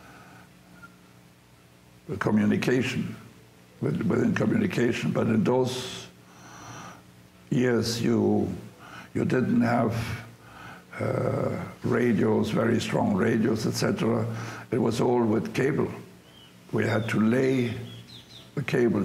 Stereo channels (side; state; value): both; identical; correlation 1.00